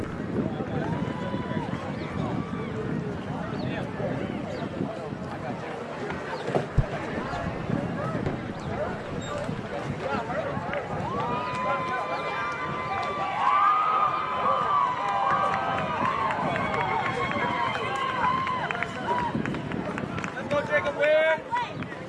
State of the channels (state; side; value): identical; both; correlation 1.00